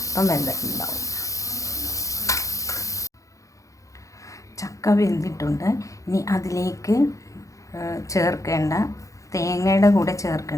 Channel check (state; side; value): late; right; 0.16 ms